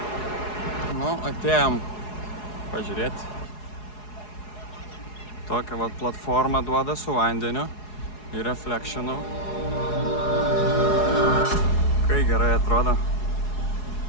Nu, atėjom pažiūrėti. Tokią vat platformą duoda su vandeniu ir reflectionu. Kai gerai atrodo.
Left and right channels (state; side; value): late; right; 4.8 ms